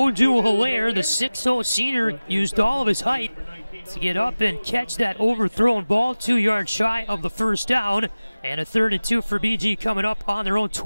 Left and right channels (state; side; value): inverted; both; correlation -0.98